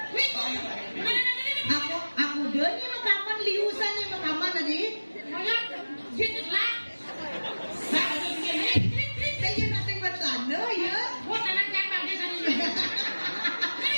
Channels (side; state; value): both; inverted; correlation -1.00